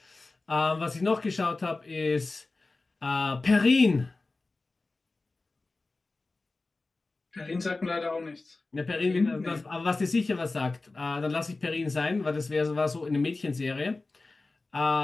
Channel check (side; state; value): right; quieter; 3.4 dB